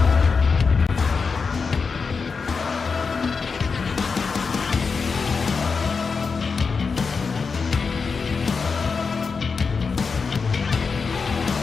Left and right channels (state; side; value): quieter; right; 5.1 dB